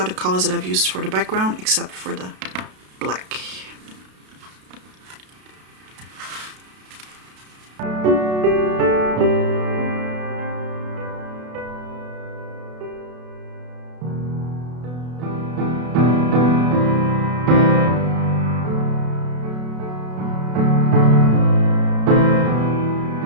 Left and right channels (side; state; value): left; late; 32 ms